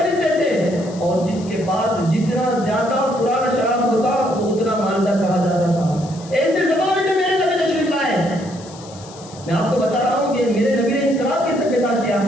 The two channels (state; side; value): noise; left; hiss, 20 dB below the sound